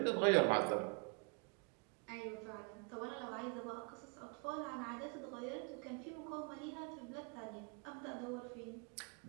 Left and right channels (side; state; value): left; quieter; 35.3 dB